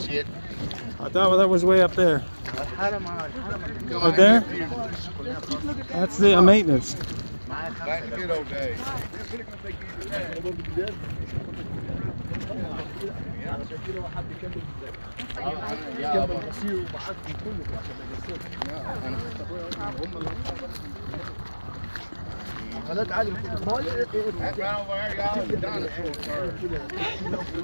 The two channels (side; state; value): both; inverted; correlation -1.00